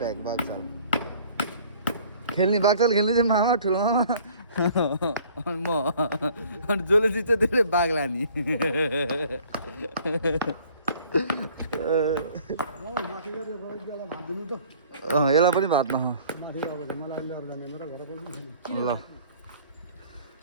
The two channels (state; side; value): inverted; both; correlation -0.53